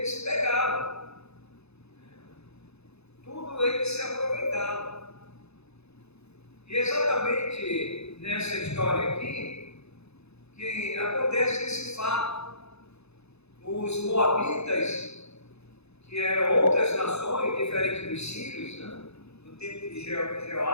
pegavam. Tudo eles se aproveitavam. E exatamente nessa história aqui, que acontece esse fato. Os moabitas, que eram outras nações diferentes dos sírios, né, no tempo de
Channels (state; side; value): late; right; 0.79 ms